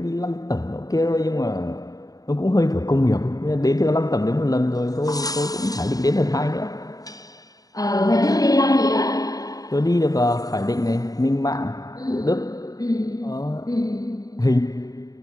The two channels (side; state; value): right; late; 0.18 ms